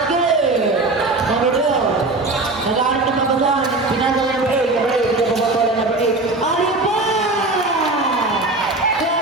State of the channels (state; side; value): quieter; left; 3.1 dB